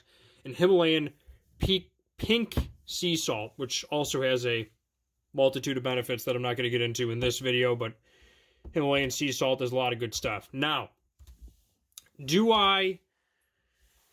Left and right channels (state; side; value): identical; both; correlation 1.00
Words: and Himalayan pink sea salt, which also has a multitude of benefits that I'm not going to get into in this video, but Himalayan sea salt does a lot of good stuff. Now, why